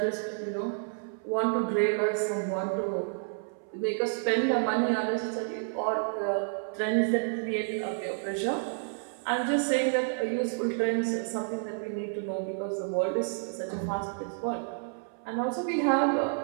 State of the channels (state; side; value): silent; left; 58 dB below the other